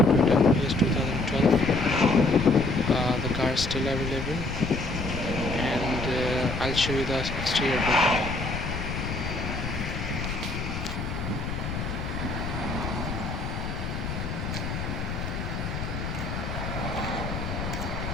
Toyota Prius 2012. The car is still available, and I'll show you the exterior bit now.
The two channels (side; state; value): left; noise; rumble, 4 dB below the sound